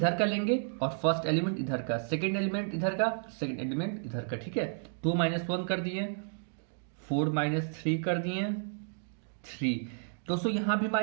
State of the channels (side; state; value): left; silent; digital silence